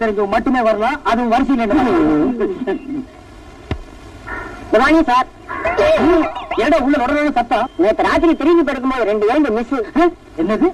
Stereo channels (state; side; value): identical; both; correlation 1.00